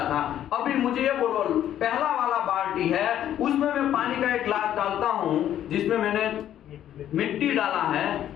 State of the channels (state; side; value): quieter; right; 11.2 dB